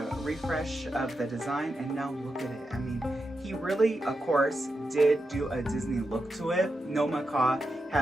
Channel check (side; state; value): both; normal; correlation 0.88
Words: refresh of the design, and now look at it. I mean, he really, of course, did do a Disney look to it. No macaw